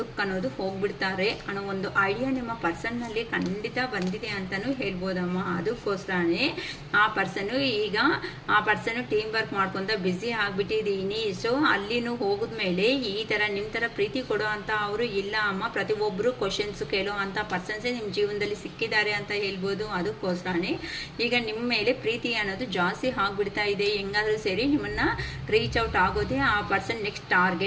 ಅನ್ನೋದು ಹೋಗ್ಬಿಡ್ತಾರೆ ಅನ್ನೋ ಒಂದು ಐಡಿಯಾ ನಿಮ್ಮ ಪರ್ಸನ್ನಲ್ಲಿ ಖಂಡಿತ ಬಂದಿದೆ ಅಂತಲೂ ಹೇಳ್ಬೋದಮ್ಮ. ಅದಕ್ಕೋಸ್ಕರನೇ ಆ ಪರ್ಸನ್ನು ಟೀಮ್ ವರ್ಕ್ ಮಾಡ್ಕೊತ ಬ್ಯುಸಿ ಆಗಿಬಿಟ್ಟಿದ್ದೀನಿ. ಸೊ ಅಲ್ಲಿನೂ ಹೋಗಿದ್ಮೇಲೆ ಈ ಥರ ನಿಮ್ಮ ಥರ ಪ್ರೀತಿ ಕೊಡೋ ಅಂತ ಅವರು ಇಲ್ಲ ಅಮ್ಮ. ಪ್ರತಿಯೊಬ್ಬರು ಕ್ವಶನ್ಸ್ ಕೇಳೋ ಅಂಥ ಪರ್ಸನ್ಸೇ ನಿಮ್ಮ ಜೀವನದಲ್ಲಿ ಸಿಕ್ಕಿದ್ದಾರೆ ಅಂತ ಹೇಳ್ಬೋದು. ಅದಕ್ಕೋಸ್ಕರನೇ ಈಗ ನಿಮ್ಮ ಮೇಲೆ ಪ್ರೀತಿ ಅನ್ನೋದು ಜಾಸ್ತಿ ಆಗಿಬಿಡ್ತಾ ಇದೆ. ಹೆಂಗಾದರೂ ಸರಿ ನಿಮ್ಮನ್ನು ರೀಚ್ ಔಟ್ ಆಗೋದೇ ಆ ಪರ್ಸನ್ ನೆಕ್ಸ್ಟ್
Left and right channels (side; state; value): both; identical; correlation 1.00